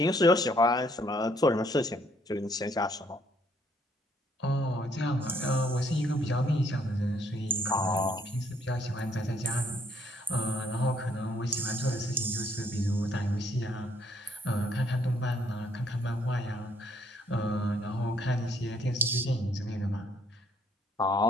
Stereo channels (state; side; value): normal; both; correlation 0.67